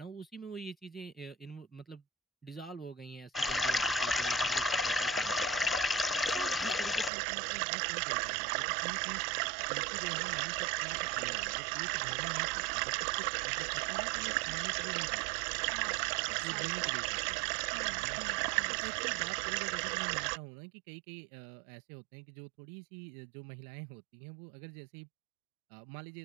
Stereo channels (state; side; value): drops out; left; at 7.1 s